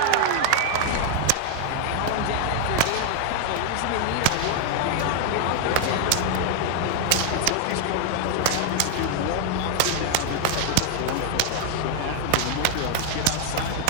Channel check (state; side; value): different; both; correlation 0.01